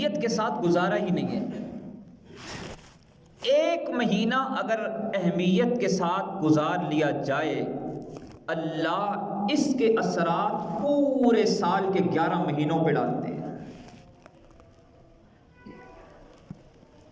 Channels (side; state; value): both; identical; correlation 1.00